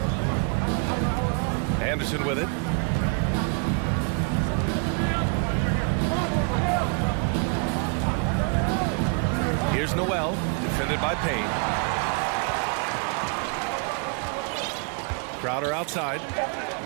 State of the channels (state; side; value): quieter; left; 37.2 dB